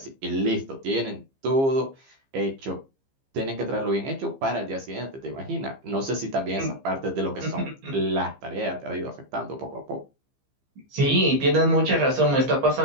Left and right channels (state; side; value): late; left; 15 ms